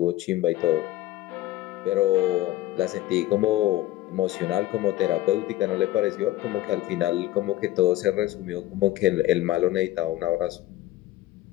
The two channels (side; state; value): right; quieter; 15.8 dB